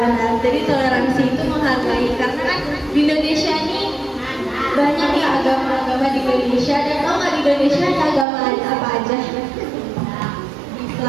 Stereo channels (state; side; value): drops out; left; at 8.2 s